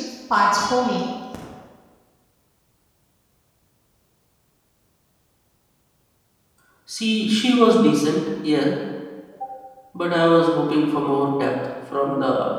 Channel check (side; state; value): both; identical; correlation 1.00